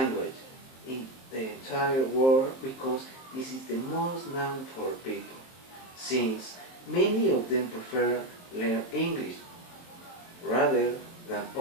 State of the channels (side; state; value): right; late; 23 ms